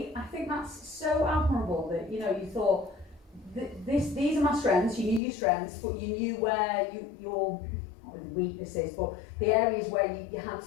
think that's so admirable that you thought these are my strengths. You knew your strengths, but you knew where your weaknesses, but the areas where you had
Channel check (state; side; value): drops out; right; at 5.2 s